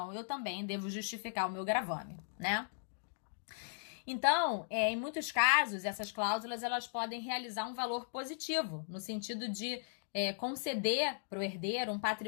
eu também devo justificar o meu gravame, né? Então, em muitos casos, essas cláusulas elas podem realizar um valor positivo, no sentido de conceder para o herdeiro um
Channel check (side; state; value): right; silent; digital silence